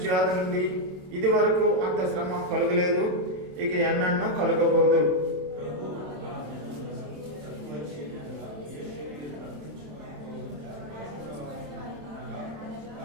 నుండి ఇది వరకు అంత శ్రమ కలుగలేదు, ఇక ఎన్నడూ కలుగబోదు.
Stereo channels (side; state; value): left; late; 27 ms